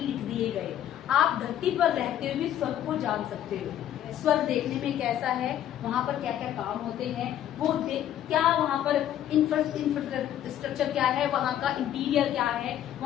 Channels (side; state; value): right; quieter; 11.2 dB